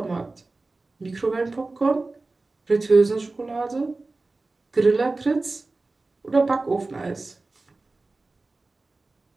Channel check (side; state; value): left; quieter; 3.4 dB